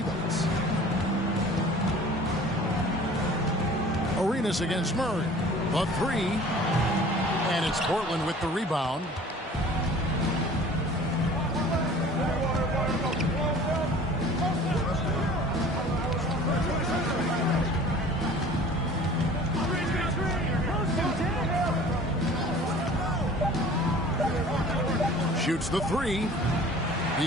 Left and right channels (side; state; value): both; normal; correlation 0.46